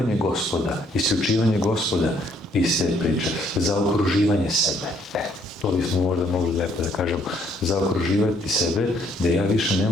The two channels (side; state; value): both; normal; correlation 0.66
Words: Gospoda, isključivanje Gospoda iz te priče, za okruživanje sebe. To bismo možda mogli lepo da kažemo, zaokruživati sebe, da ja više